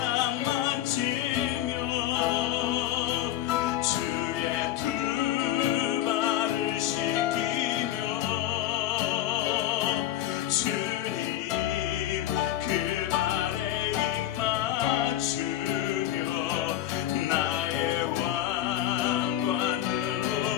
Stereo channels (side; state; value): right; quieter; 12.9 dB